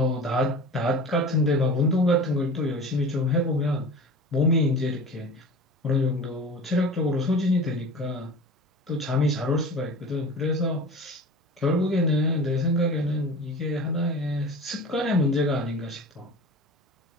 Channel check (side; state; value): both; normal; correlation 0.36